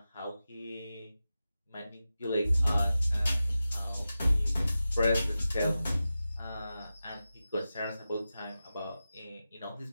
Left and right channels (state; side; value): inverted; both; correlation -0.93